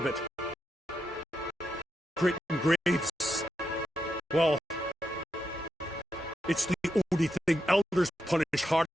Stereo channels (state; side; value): normal; both; correlation 0.85